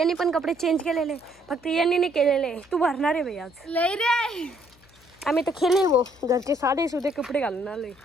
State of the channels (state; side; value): noise; left; hum, 28 dB below the sound